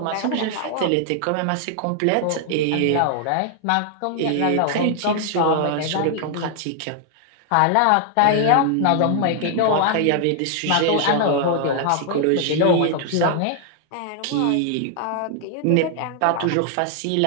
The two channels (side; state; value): both; different; correlation 0.00